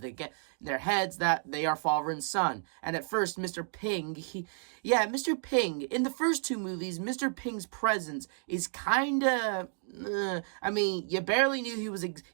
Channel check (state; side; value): silent; left; 57 dB below the other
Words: their heads that they are father and son. And at first, Mr. Ping, Mr. Ping, in the first two movies, Mr. Ping's presence is kinda, I mean, you barely knew